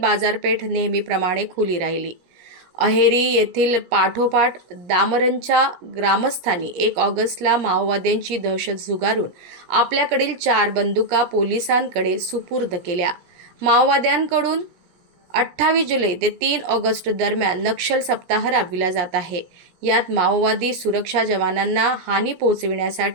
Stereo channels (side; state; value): left; late; 17 ms